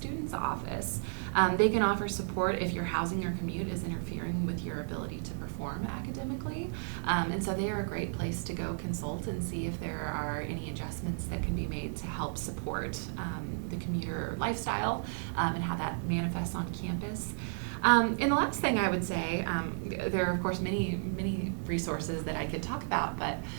office. They can offer support if your housing or commute is interfering with your ability to perform academically. And so they are a great place to go consult and see if there are any adjustments that can be made to help support the commuter lifestyle and how that manifests on campus. And the last thing I would say, there are of course many resources that I could talk about, but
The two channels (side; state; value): left; silent; 56 dB below the other